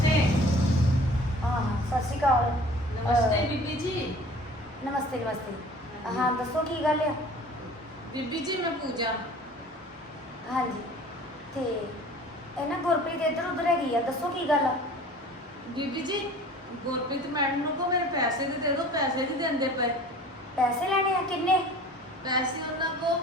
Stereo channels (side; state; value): both; normal; correlation 0.46